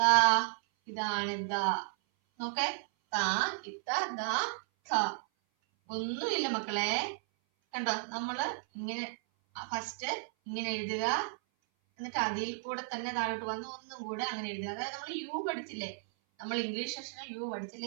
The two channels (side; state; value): left; silent; 55 dB below the other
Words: ഇതാണ് ദ. നോക്കേ, താ ഇത്ത ദ ഖ. ഒന്നുമില്ല മക്കളെ, കണ്ടോ? നമ്മള് ഇങ്ങനെ ഫസ്റ്റ് ഇങ്ങനെ എഴുതുക, എന്നിട്ട് അതിൽ കൂടെ തന്നെ താഴോട്ട് വന്ന് ഒന്നും കൂടെ അങ്ങനെ എഴുതുക. അതായത് നമ്മൾ യു പഠിച്ചില്ലേ, നമ്മൾ ഇംഗ്ലീഷ് സെക്ഷനിൽ യു